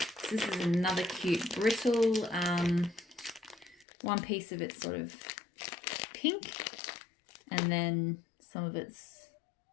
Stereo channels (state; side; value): drops out; right; at 3.9 s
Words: So this is another cute brittle. One piece of it's sort of pink, and then some of it's,